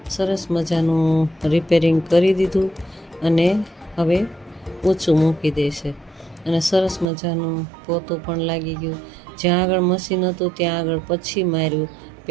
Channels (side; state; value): left; drops out; at 7.1 s